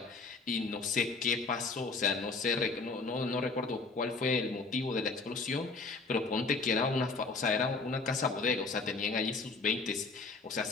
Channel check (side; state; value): right; quieter; 4.0 dB